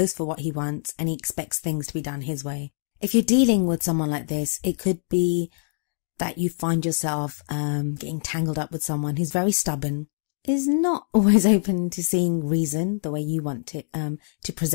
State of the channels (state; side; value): silent; right; 62 dB below the other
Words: for what he wants, and he expects things to be done his way. If you're dealing with someone like this, it could be that you find yourself getting tangled up with someone who's very stubborn, is not always open to seeing reason the way you want it to